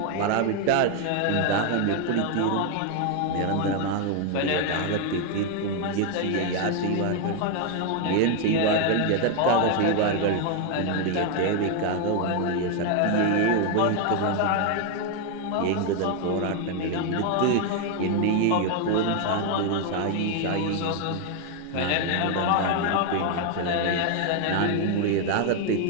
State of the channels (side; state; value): both; different; correlation 0.01